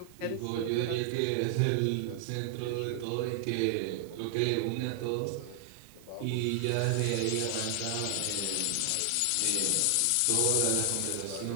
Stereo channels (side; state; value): both; different; correlation 0.00